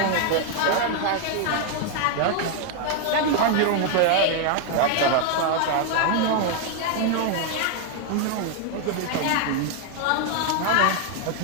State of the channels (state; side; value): different; both; correlation 0.00